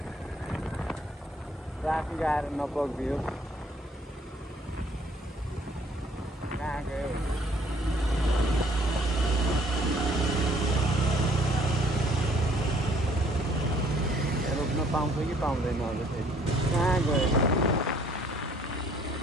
ट्राफिक आएर नपक्दियो। कहाँ गयो? रोक्न पाउँछ कि पाउँदैन होला फेरि? कहाँ गयो?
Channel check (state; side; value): normal; both; correlation 0.60